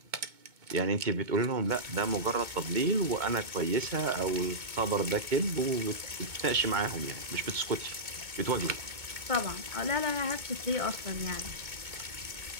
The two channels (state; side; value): late; left; 2.2 ms